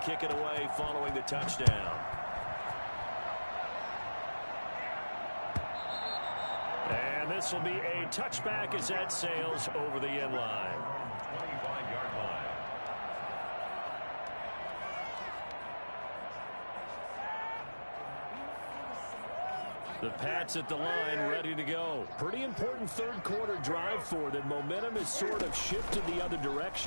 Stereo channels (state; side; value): inverted; both; correlation -1.00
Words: it away following the touchdown. And this will be a touchback as that sails over the end line. 25-yard line. The Pats at the line ready to go. Pretty important 3rd quarter drive for them. Momentum has sort of shifted the other